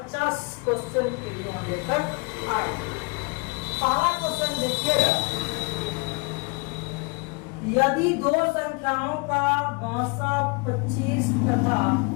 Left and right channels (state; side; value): quieter; right; 30.0 dB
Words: क्वेश्चन के लिए हम लेकर आए। पहला क्वेश्चन देखिएगा, यदि दो संख्याओं का भाषा 25 तथा